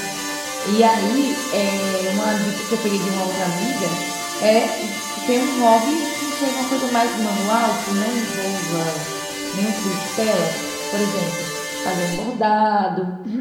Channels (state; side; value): identical; both; correlation 1.00